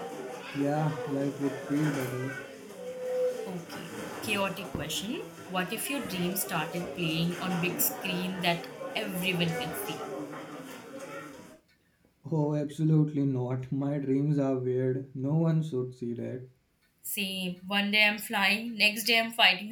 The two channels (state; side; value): identical; both; correlation 1.00